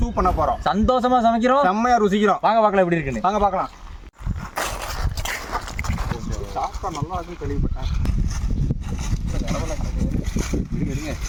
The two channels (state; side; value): identical; both; correlation 1.00